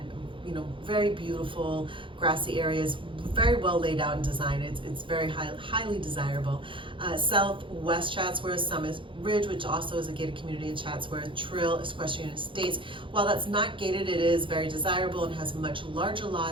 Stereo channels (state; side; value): late; left; 0.25 ms